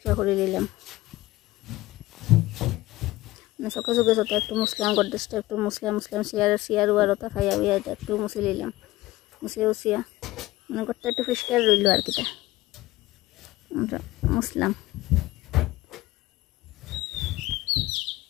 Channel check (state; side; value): quieter; right; 18.1 dB